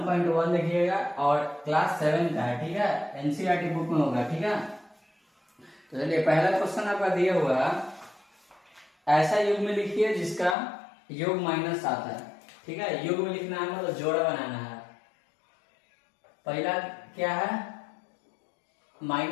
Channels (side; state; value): right; drops out; at 10.6 s